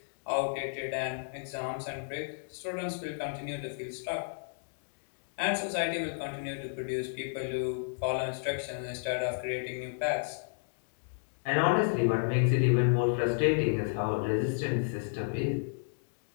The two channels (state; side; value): silent; right; digital silence